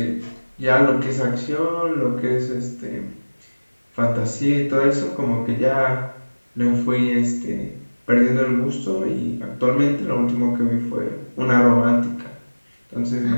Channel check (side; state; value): both; inverted; correlation -1.00